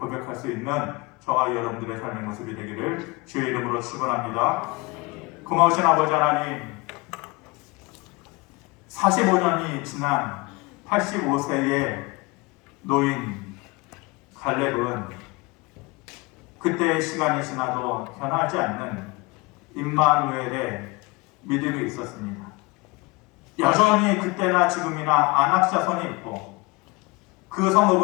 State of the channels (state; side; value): quieter; right; 25.0 dB